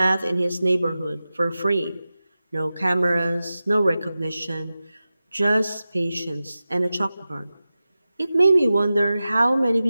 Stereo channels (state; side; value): inverted; both; correlation -0.95